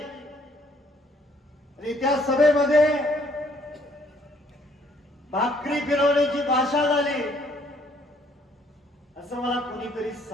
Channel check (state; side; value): normal; both; correlation 0.64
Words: आणि त्या सभेमध्ये भाकरी फिरवण्याची भाषा झाली असं मला कुणीतरी